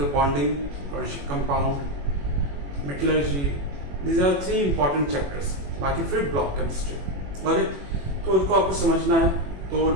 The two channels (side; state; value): left; late; 21 ms